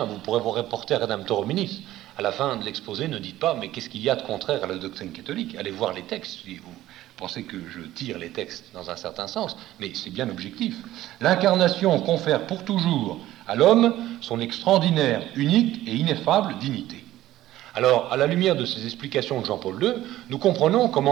vous pourrez vous reporter à Redemptor Hominis. À la fin de l'exposé, ne dites pas, mais qu'est-ce qu'il y a de contraire à la doctrine catholique? Allez voir les textes, si vous pensez que je tire les textes dans un certain sens, mais c'est bien objectif. L'incarnation confère pour toujours à l'homme son extraordinaire, unique et ineffable dignité. Alors, à la lumière de ces explications de Jean-Paul II, nous comprenons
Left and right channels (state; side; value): quieter; left; 14.7 dB